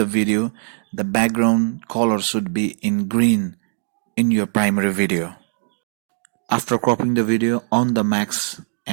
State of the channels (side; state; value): left; silent; digital silence